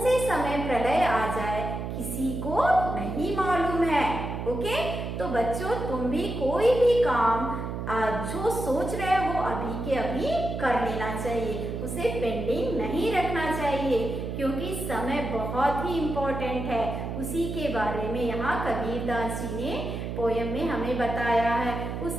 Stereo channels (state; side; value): noise; right; hum, 5 dB below the sound